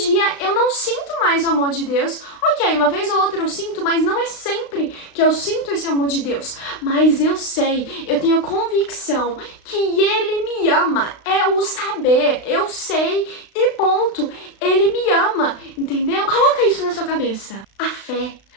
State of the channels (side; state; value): right; late; 36 ms